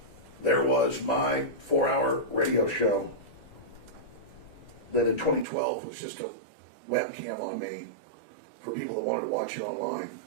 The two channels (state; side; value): drops out; left; at 5.5 s